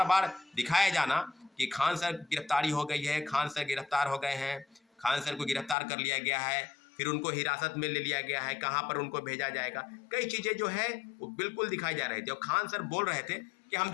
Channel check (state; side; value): drops out; right; at 5.8 s